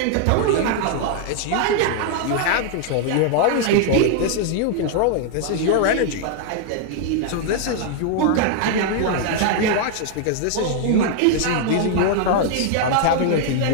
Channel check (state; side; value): different; both; correlation 0.00